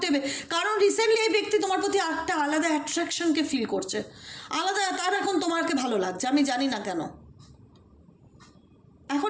হবে। কারণ রিসেন্টলি এই ব্যক্তি তোমার প্রতি একটা আলাদা অ্যাট্রাকশনকে ফিল করছে, আলাদা, তার এখন তোমাকে ভালো লাগছে, আমি জানি না কেন। এখন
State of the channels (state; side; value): identical; both; correlation 1.00